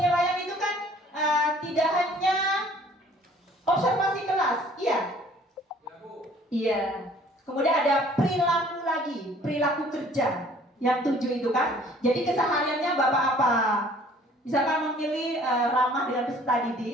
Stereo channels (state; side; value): normal; both; correlation 0.54